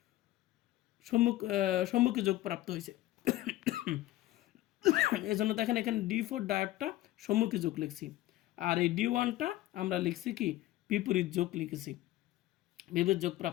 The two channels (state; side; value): quieter; right; 15.8 dB